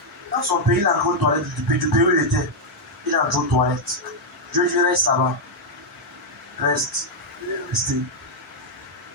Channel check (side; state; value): both; normal; correlation -0.01